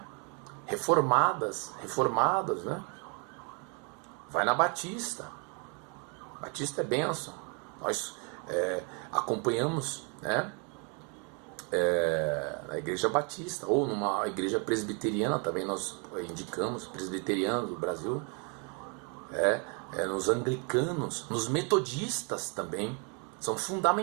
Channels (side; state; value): left; quieter; 36.0 dB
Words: reformadas, né? Vai na Batista. Batista é bênção. Nós acompanhamos, né? Na Igreja Batista, ou numa igreja presbiteriana, também nós indicamos, presbiteriana do Brasil, nos anglicanos, nos metodistas também, são